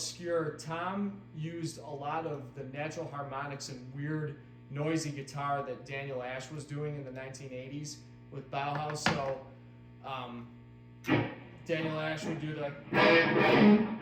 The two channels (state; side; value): identical; both; correlation 1.00